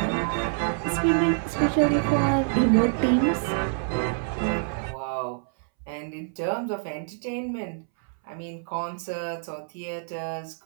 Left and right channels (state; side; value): silent; left; 60 dB below the other